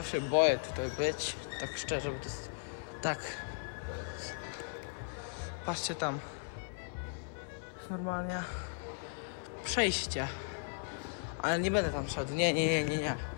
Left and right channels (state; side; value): silent; right; digital silence